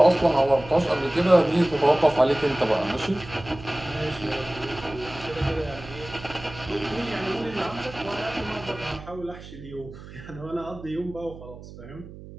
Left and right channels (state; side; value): noise; right; hum, 15 dB below the sound